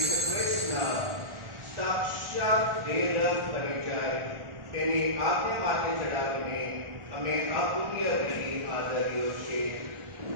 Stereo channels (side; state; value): left; late; 1.4 ms